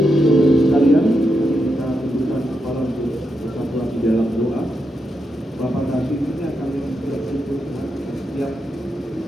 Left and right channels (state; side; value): normal; both; correlation 0.85